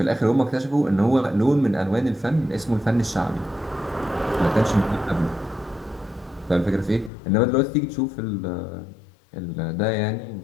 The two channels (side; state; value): right; drops out; at 7.1 s